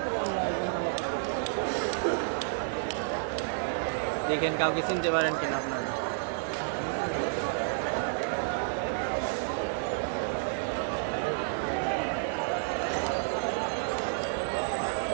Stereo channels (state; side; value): silent; left; digital silence